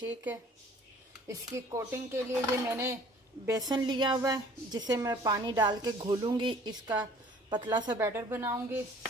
है। इसकी कोटिंग के लिए ये मैंने बेसन लिया हुआ है, जिसे मैं पानी डाल के घोलूँगी, इसका पतला सा बैटर बनाऊँगी।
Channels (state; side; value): normal; both; correlation 0.52